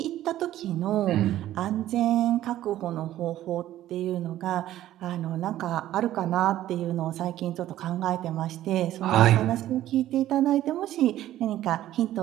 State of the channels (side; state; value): left; quieter; 13.4 dB